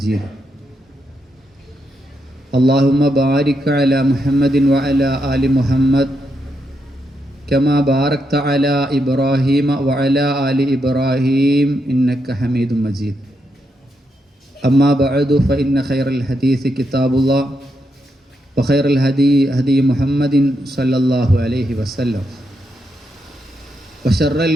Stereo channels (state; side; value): normal; both; correlation 0.82